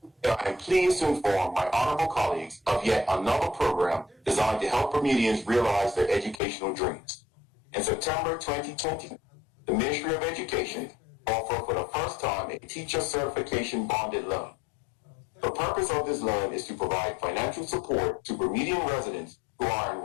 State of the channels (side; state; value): right; drops out; at 6.4 s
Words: I am pleased to inform my honorable colleagues of yet another program designed to help Bermudians realize their educational dreams. In September 2020, the Ministry of Education offered for the first time a teacher certification bonded loan. The purpose of this loan is to provide financial support to Bermudian residents who are